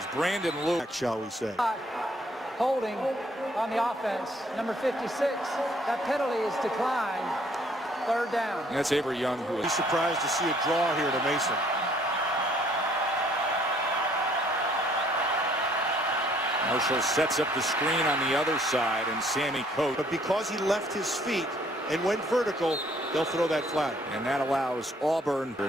Brandon Lewis, Shall we say. Holding on the offense. Number 56. That penalty is declined. Third down. and that's Avery Young, who Be is surprised to see a draw here to Mason. Marshall sets up the screen on the other side, and Sammy Coates. But because he left his feet and went vertical, they'll throw that flag. And that allows Auburn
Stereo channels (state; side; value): normal; both; correlation 0.62